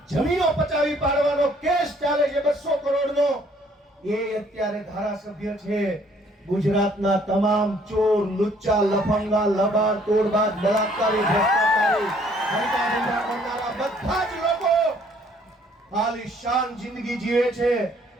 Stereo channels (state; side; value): normal; both; correlation 0.61